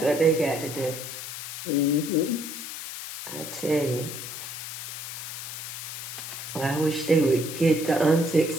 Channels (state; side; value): noise; left; hiss, 8 dB below the sound